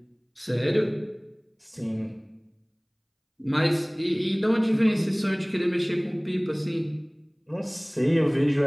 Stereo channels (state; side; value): identical; both; correlation 1.00